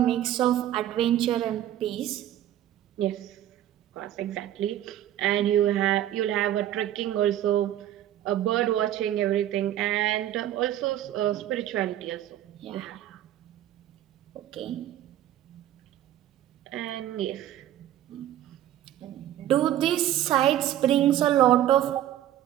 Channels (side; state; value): left; quieter; 12.2 dB